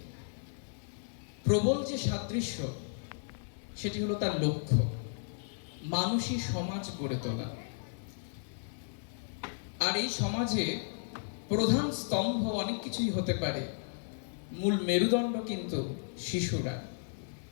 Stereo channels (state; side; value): silent; right; 55 dB below the other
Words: প্রবল যে সাদৃশ্য, সেটি হলো তার লক্ষ্য, মানুষই সমাজ গড়ে তোলা। আর এই সমাজে প্রধান স্তম্ভ অনেক কিছুই হতে পারে, মূল মেরুদণ্ড কিন্তু শিশুরা।